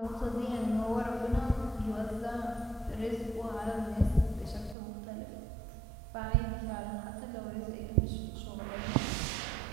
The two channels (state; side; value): drops out; left; at 4.8 s